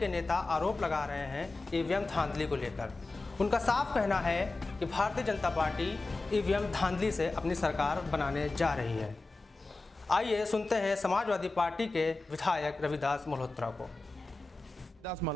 नेता आरोप लगा रहे हैं ईवीएम धांधली को लेकर। उनका साफ कहना है कि भारतीय जनता पार्टी ईवीएम धांधली से अपनी सरकार बनाने जा रही है। आइए सुनते हैं समाजवादी पार्टी के विधायक रविदास मल्होत्रा को। रविदास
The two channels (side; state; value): right; quieter; 3.3 dB